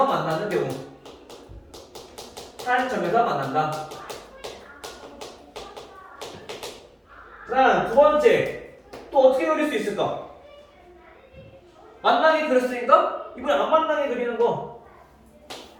만나는 경우. 한 점에서 만난다. 그다음 두 번째. 또 어떻게 그릴 수 있을까? 만나게 그렸으니까 이번에 안 만나게 그리는 거.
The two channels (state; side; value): identical; both; correlation 1.00